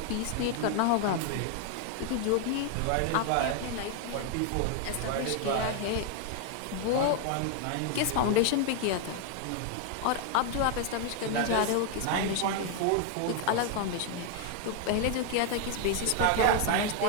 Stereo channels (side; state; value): both; different; correlation 0.00